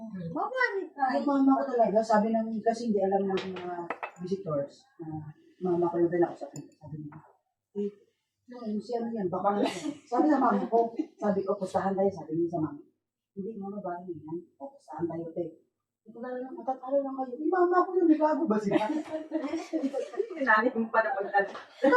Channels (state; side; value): identical; both; correlation 1.00